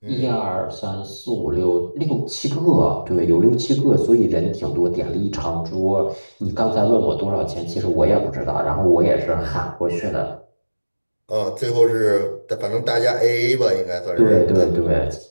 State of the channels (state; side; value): inverted; both; correlation -1.00